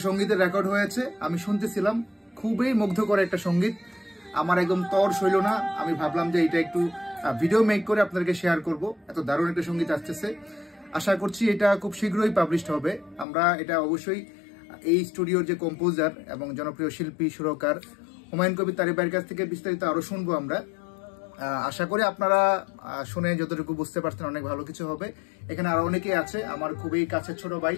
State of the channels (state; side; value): drops out; right; at 13.2 s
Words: সঙ্গীতের রেকর্ড হয়েছে, আমি শুনতেছিলাম। খুবই মুগ্ধকর একটা সঙ্গীত, আমার একদম তর সইল না। আমি ভাবলাম যে এটা একটু ভিডিও মেক করে আপনাদেরকে শেয়ার করব। এত দারুণ একটা সঙ্গীত আসতেছে। আশা করছি এটা খুব শীঘ্রই পাবলিশড হবে। আমরা এটা অবশ্যই এই স্টুডিওর যে কম্পোজার এবং জনপ্রিয় শিল্পী সুরকার হুমায়ুন কবির তারিক ভাইয়ের কাছ থেকে বিস্তারিত আরো শুনবো আমরা। আশা করি আপনারা শুনে যতটুকু বুঝতে পারছেন অনেক ভালো কিছু হবে। এখানে আরো অনেকেই আছে, আমার খুবই কাছের ছোট ভাই